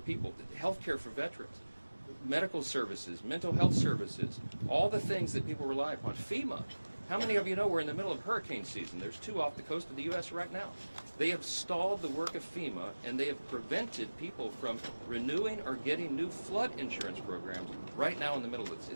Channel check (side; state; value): both; inverted; correlation -1.00